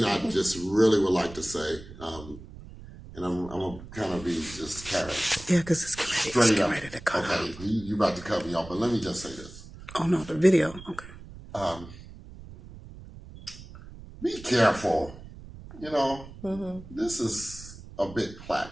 I just really would like to say, and I'm gonna kind of be just carrot Yeah, because it's straight getting up. ready to cut Okay, out. you about to cut me off, but let me just say this: Oh no, the video. Okay. be careful. You know, this is a big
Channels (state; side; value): noise; right; rumble, 16 dB below the sound